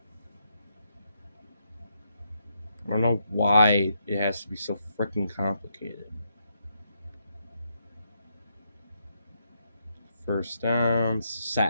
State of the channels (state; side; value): inverted; both; correlation -0.79